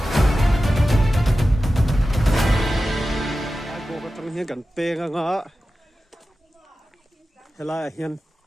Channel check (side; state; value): both; normal; correlation 0.94